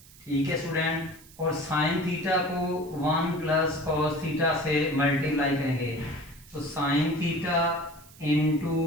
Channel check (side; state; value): right; noise; hiss, 23 dB below the sound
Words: ठीक है स्टूडेंट। और साइन थीटा को 1 प्लस कॉस थीटा से मल्टीप्लाई करेंगे, तो sine theta into